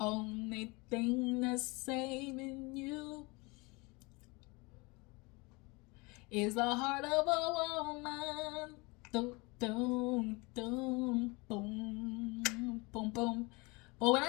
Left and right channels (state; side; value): quieter; right; 26.4 dB